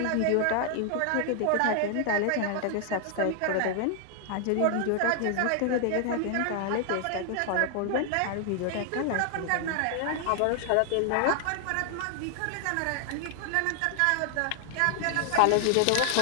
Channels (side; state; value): both; different; correlation 0.00